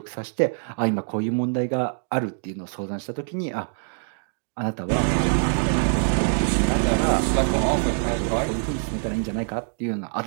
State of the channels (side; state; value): left; silent; 62 dB below the other